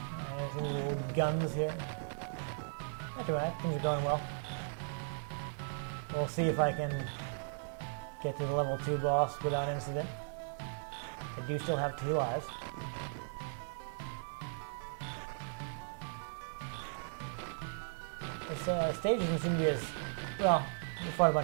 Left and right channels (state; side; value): silent; left; 53 dB below the other